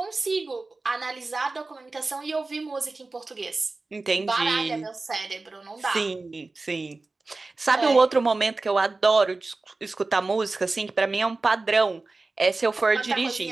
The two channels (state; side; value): quieter; left; 3.5 dB